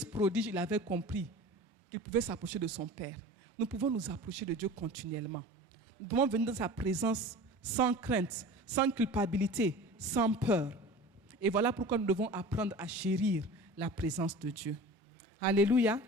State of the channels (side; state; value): both; normal; correlation 0.38